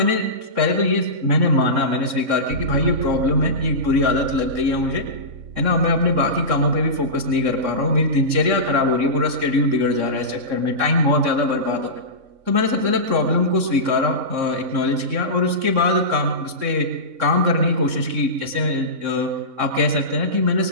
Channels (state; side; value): late; left; 3.6 ms